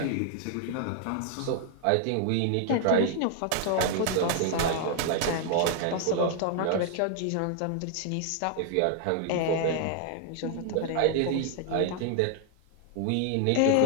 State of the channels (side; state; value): both; different; correlation 0.00